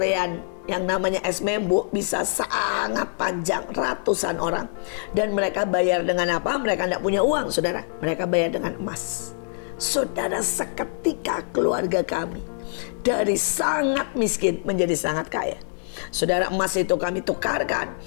yang namanya es membu bisa sangat panjang, ratusan orang. Dan mereka bayar dengan apa? Mereka tidak punya uang, saudara. Mereka bayar dengan emas. Saudara, seketika keluarga kami dari sangat miskin menjadi sangat kaya. Saudara, emas itu kami tukarkan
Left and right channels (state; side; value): silent; right; digital silence